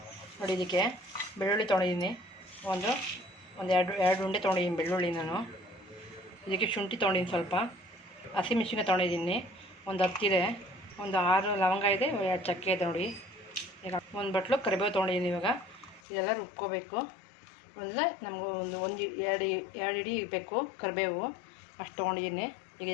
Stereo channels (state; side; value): drops out; right; at 16.0 s